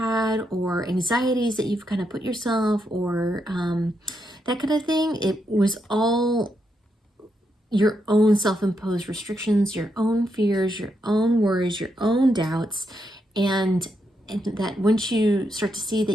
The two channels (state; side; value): normal; both; correlation 0.81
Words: or anxieties that you've kind of put yourself or that kind of thing, it was all your own self-imposed restrictions, your own fears, your own worries, your own doubts, and that once you start to see